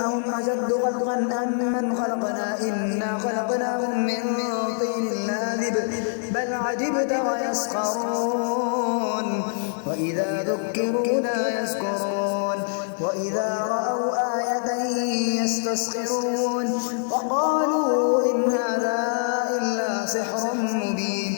أهم أشد خلقا أم من خلقنا إنا خلقناهم من طين لاذب بل عجبت ويسخرون وإذا ذكروا لا يذكرون وإذا رأوا آية يستسخرون وقالوا إن هذا إلا سحر مبين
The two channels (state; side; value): silent; right; 62 dB below the other